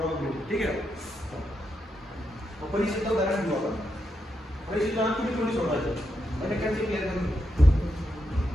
ठीक आहे. परीक्षेचं उदाहरण घेऊ आपण. परीक्षेचं तुम्ही थोडी सोडवायचं म्हणजे कॅल्क्युलेशन क्लिअर करून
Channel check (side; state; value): both; normal; correlation 0.83